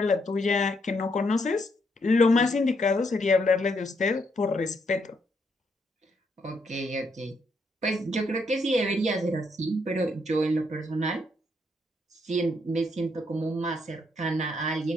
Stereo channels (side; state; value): both; normal; correlation 0.75